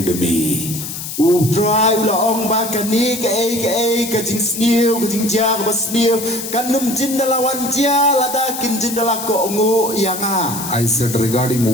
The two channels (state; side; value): noise; left; hiss, 8 dB below the sound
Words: me. Utray ulaong ba kani ka jing sniu ka jing ja ka sniu kanum jindalawan ja ladakin jindala ko ungu yanga. I said, regarding